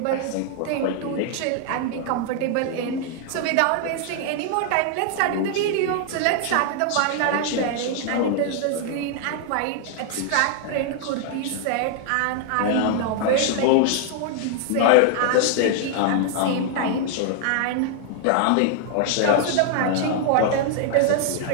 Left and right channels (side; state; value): both; different; correlation 0.00